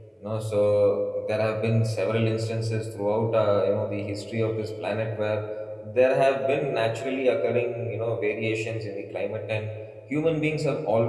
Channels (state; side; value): identical; both; correlation 1.00